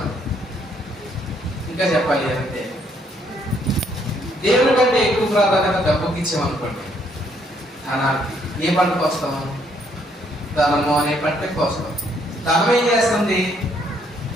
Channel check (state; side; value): normal; both; correlation 0.69